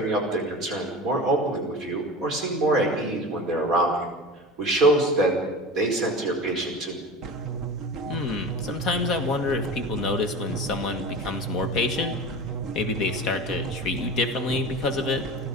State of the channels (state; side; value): normal; both; correlation 0.32